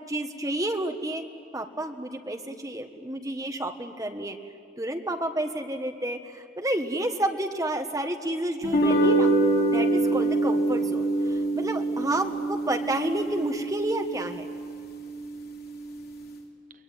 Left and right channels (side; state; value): both; normal; correlation 0.56